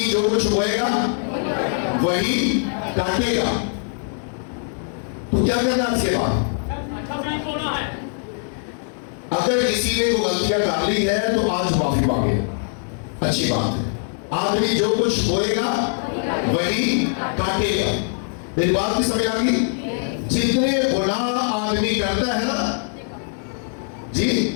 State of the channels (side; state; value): right; silent; 61 dB below the other